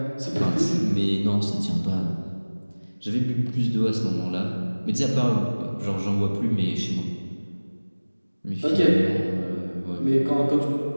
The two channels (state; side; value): inverted; both; correlation -1.00